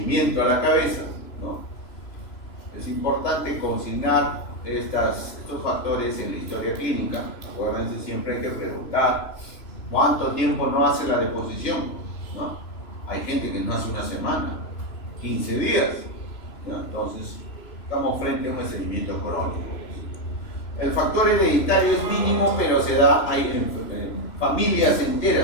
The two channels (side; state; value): right; late; 3.0 ms